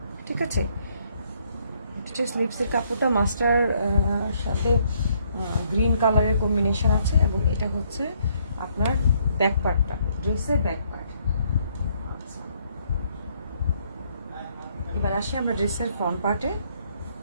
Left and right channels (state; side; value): inverted; both; correlation -0.69